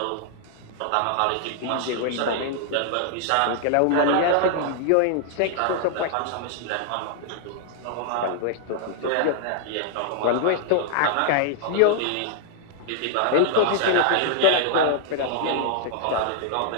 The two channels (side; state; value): both; different; correlation 0.00